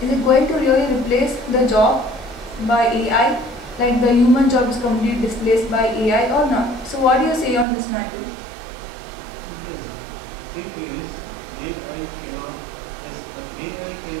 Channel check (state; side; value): drops out; left; at 7.7 s